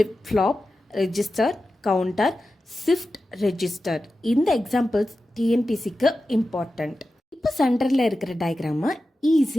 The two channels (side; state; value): both; normal; correlation 0.93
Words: flop, register, counter, shift register. இந்த எக்ஸாம்பிள்ஸ் டிஎன்பிசிக்கு இம்பார்ட்டண்ட். இப்போ சென்டரில் இருக்கிற டயக்ராமை